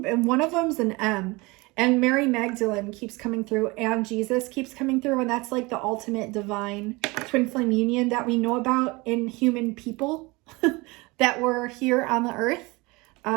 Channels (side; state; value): left; quieter; 24.4 dB